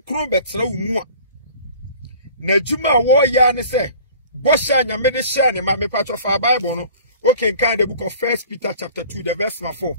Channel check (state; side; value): inverted; both; correlation -0.46